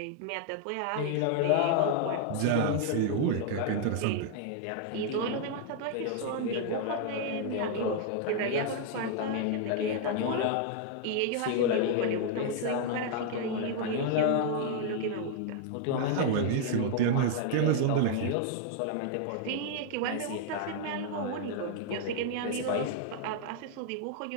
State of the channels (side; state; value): both; different; correlation 0.00